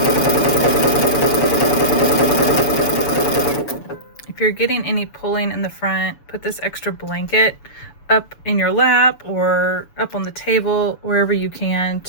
If you're getting any pulling in the front, put this extra blanket up in your lap or up on the table, wherever you can,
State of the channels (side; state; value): right; late; 6.9 ms